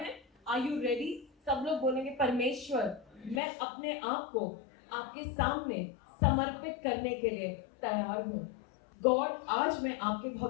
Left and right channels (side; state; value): right; drops out; at 3.4 s